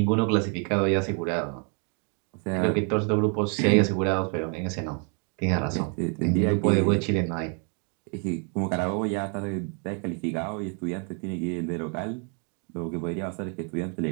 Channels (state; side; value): quieter; left; 39.3 dB